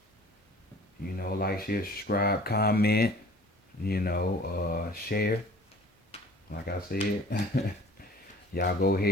Like, share, subscribe, comment, share. Like I said, y'all go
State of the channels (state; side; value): normal; both; correlation 0.48